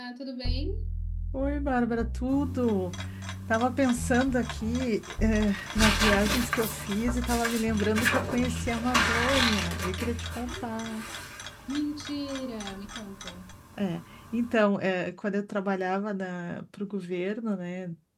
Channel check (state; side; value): identical; both; correlation 1.00